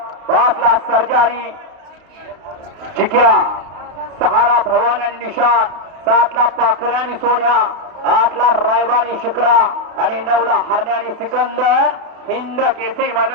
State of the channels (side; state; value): left; late; 32 ms